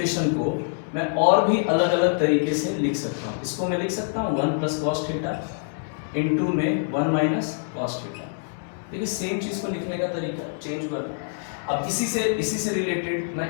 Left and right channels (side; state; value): right; silent; digital silence